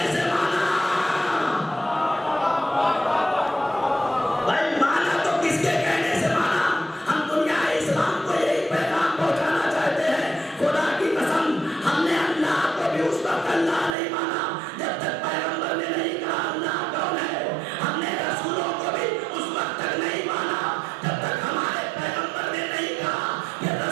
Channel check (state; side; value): drops out; left; at 14.0 s